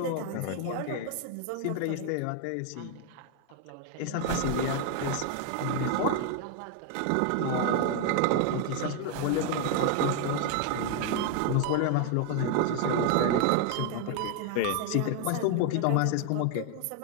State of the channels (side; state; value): both; different; correlation 0.01